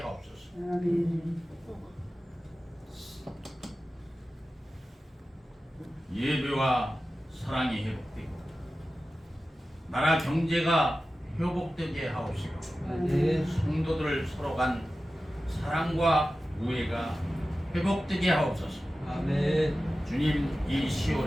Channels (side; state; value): both; normal; correlation 0.94